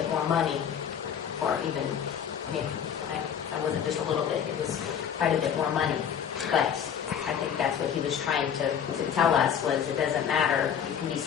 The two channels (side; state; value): right; quieter; 8.3 dB